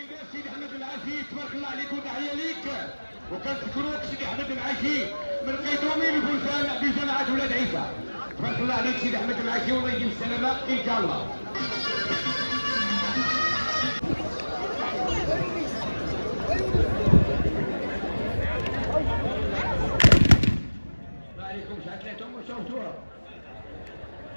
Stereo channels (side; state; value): both; inverted; correlation -1.00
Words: سيدي احمد العاشي تبارك الله عليك وتحيه ليك، وكنشكروك سيدي احمد العاشي من قيدومي لفرسان بجماعه ولاد عيسى. تبارك الله عليك سيدي احمد العاشي والله يجيب السلامه ان شاء الله. الله عليكم شعلتهم وشوفتوها.